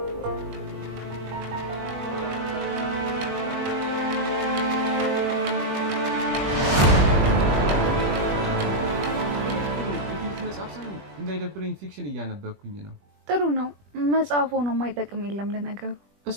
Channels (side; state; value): left; late; 21 ms